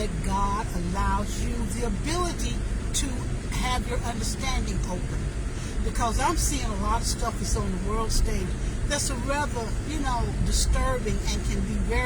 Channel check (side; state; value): both; identical; correlation 1.00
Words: God allows you the ability to have your understanding open. Because I'm seeing a lot of stuff that's on the world stage that's a rather, you know, disturbing and can be